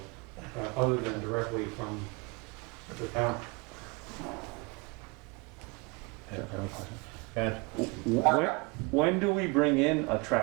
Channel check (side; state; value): left; quieter; 28.7 dB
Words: other than directly from the town. And When do we bring in a